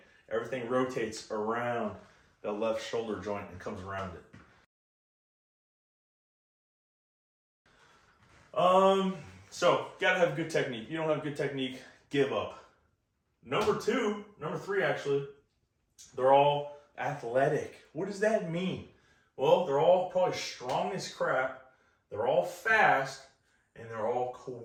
Everything rotates around the left shoulder joint and comes around it. So gotta have good technique. If you don't have good technique, give up. Number three actually, they're all athletic. What does that mean? Well, they're all probably strong as crap, they're all fast, and they're all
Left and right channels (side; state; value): both; identical; correlation 1.00